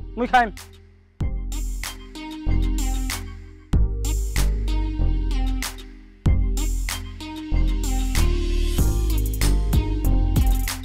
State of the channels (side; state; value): both; identical; correlation 1.00